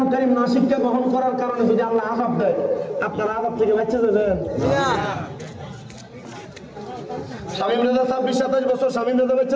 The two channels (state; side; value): identical; both; correlation 1.00